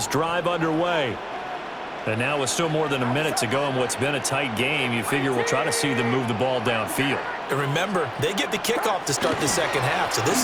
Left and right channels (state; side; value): identical; both; correlation 1.00